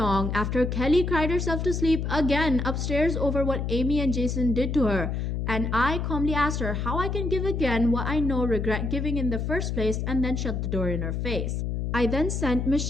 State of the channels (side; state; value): left; noise; hum, 2 dB below the sound